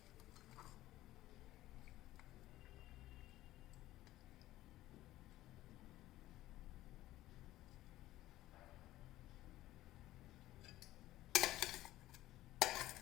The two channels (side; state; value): right; quieter; 15.5 dB